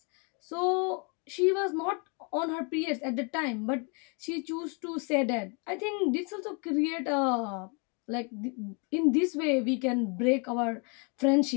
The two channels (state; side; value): quieter; right; 34.7 dB